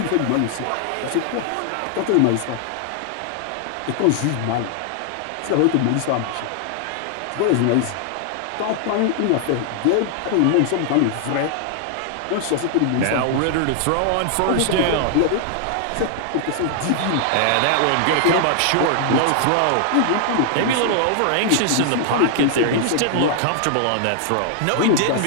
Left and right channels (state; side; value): different; both; correlation 0.00